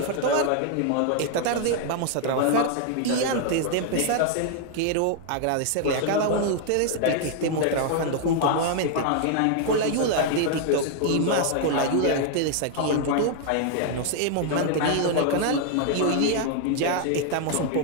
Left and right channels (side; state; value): both; different; correlation 0.00